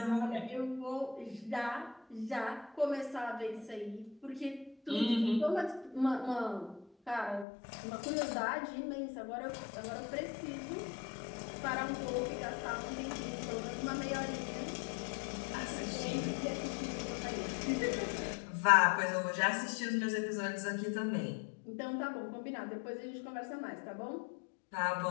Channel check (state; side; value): drops out; right; at 7.5 s